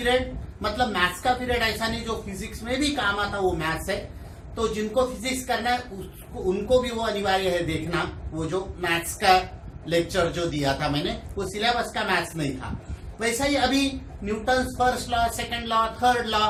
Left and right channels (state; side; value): identical; both; correlation 1.00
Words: मतलब मैथ्स का पीरियड ऐसा नहीं जो फिजिक्स में भी काम आता, वो मैथ्स है। तो जिनको फिजिक्स करना है उनको भी वो अनिवार्य है देखना, वो जो मैथ्स का लेक्चर जो दिया था मैंने, वो सिलेबस का मैथ्स नहीं था। वैसा ही अभी Newton's first law, second law, third law,